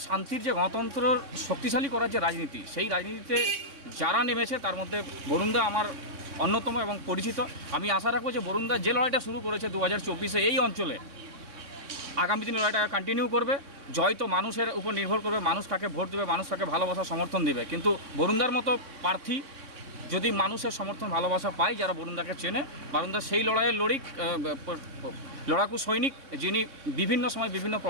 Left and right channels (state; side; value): late; left; 3.6 ms